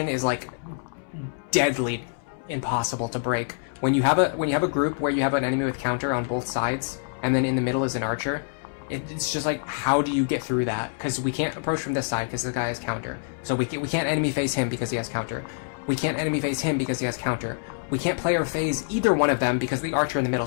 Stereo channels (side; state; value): right; silent; 61 dB below the other